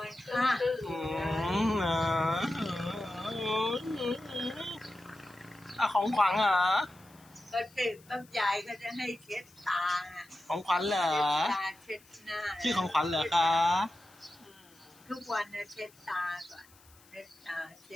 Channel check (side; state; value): left; noise; hiss, 27 dB below the sound